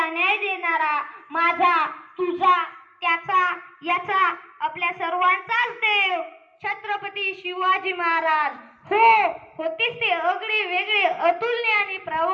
न्याय देणारा, माझा, तुझा, त्याचा, याचा, आपल्या सर्वांचाच देव छत्रपती शिवाजी महाराज. होतेच ते अगळे वेगळे, अतुलनीय आणि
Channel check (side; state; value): both; identical; correlation 1.00